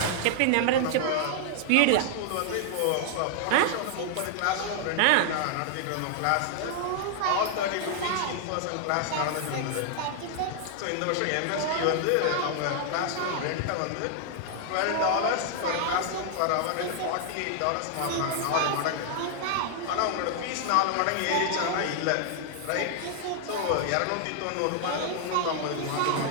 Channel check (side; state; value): both; different; correlation 0.00